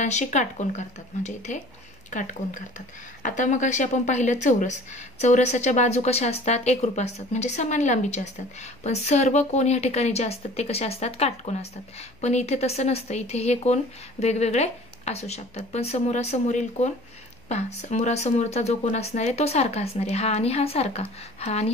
काटकोन करतात, म्हणजे इथे काटकोन करतात. आता मग अशी आपण पाहिलं चौरस. चौरसाच्या बाजू कशा असतात, एकरूप असतात, म्हणजे समान लांबीचे असतात. पण सर्व कोन या ठिकाणी जे असतात ते कसे असतात, काटकोन असतात. पण इथे तसं नसतं, इथे हे कोन वेगवेगळे असू शकतात. पण समोरासमोरील कोन पहा, समोरासमोरचा जो कोन असणार आहे तो सारखा असणार आहे, हा आणि हा सारखा, हा आणि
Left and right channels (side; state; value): left; noise; hum, 29 dB below the sound